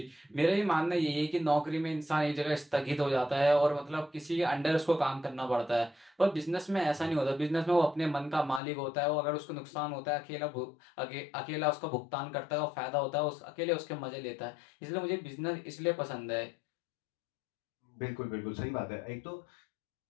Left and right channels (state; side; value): drops out; right; at 8.6 s